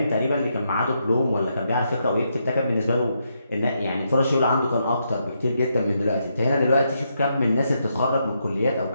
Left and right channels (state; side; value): inverted; both; correlation -0.80